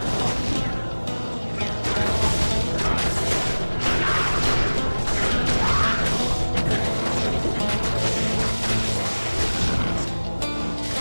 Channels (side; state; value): both; inverted; correlation -1.00